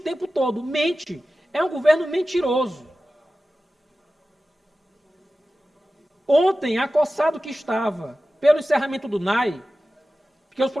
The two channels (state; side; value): normal; both; correlation 0.95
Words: todo, mente. é um governo mentiroso. Ontem, acossado que estava pelo encerramento do NAI, porque os